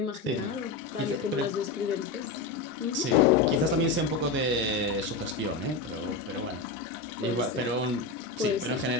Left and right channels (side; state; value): right; quieter; 3.9 dB